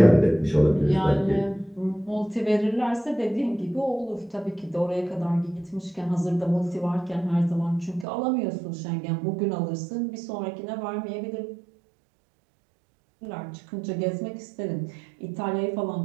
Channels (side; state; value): left; drops out; at 8.1 s